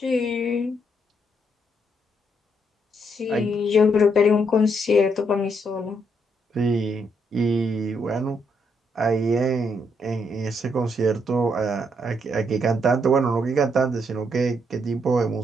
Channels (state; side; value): normal; both; correlation 0.75